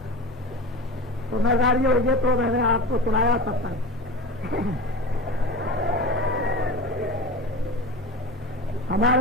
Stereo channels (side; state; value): both; normal; correlation 0.31